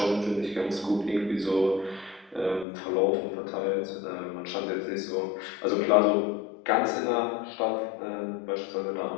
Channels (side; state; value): right; drops out; at 2.7 s